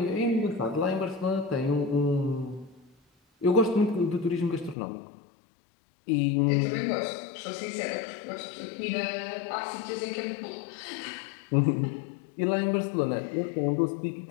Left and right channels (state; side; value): drops out; right; at 4.8 s